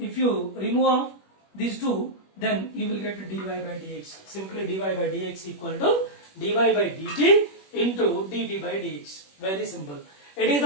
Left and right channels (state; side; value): late; right; 21 ms